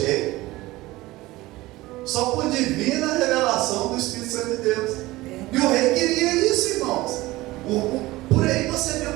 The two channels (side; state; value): left; quieter; 18.9 dB